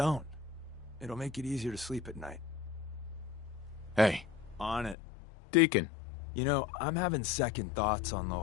It'll make it easier to sleep at night. Hey, On it. Deacon. You know, I'm having second thoughts on the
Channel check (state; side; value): drops out; right; at 5.0 s